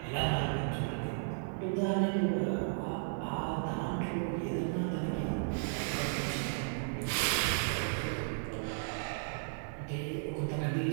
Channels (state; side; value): silent; left; 55 dB below the other